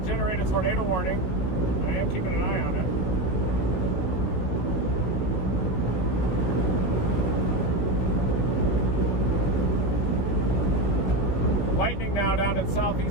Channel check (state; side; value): late; right; 17 ms